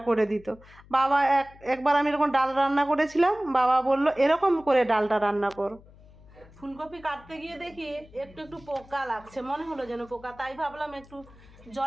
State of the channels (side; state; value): left; noise; hum, 23 dB below the sound